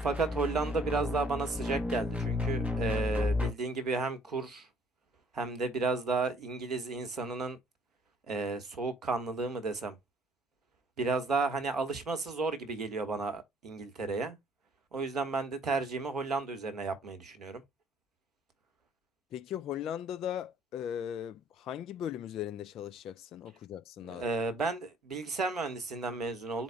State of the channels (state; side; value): normal; both; correlation 0.60